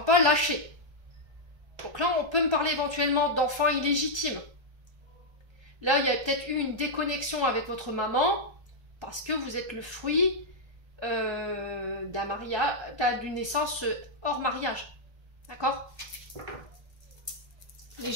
pas, lâchez. Donc là, on peut me parler éventuellement d'enfants illégitimes. Là, il y a peut-être eu une déconnexion avec votre maman, parce que vous êtes le fruit d'un mariage, d'une naissance hors mariage. D'accord? Les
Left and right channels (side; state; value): left; late; 1.2 ms